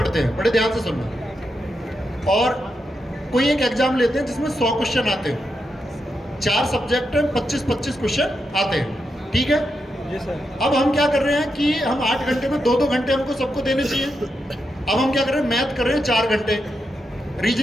हैं, बड़े ध्यान से सुनना, और कोई एक एग्जाम लेते हैं जिसमें 100 क्वेश्चन आते हैं, 4 सब्जेक्ट में 25-25 क्वेश्चन आते हैं, ठीक है जी सर। अब हम क्या कर रहे हैं कि हम 8 घंटे में 2-2 घंटे हमको सबको देने चाहिए। अब हम क्या कर रहे हैं, मैथ कर रहे हैं 4 घंटे,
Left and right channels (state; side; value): normal; both; correlation 0.85